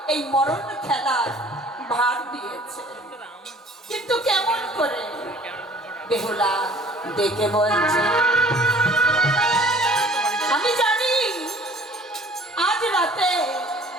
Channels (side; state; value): both; normal; correlation 0.52